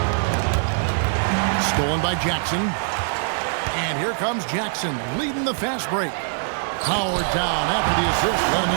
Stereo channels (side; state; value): left; silent; digital silence